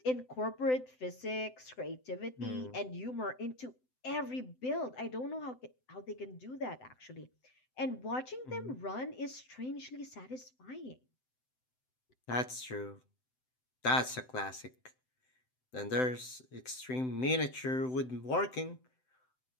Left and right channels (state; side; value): late; right; 7.8 ms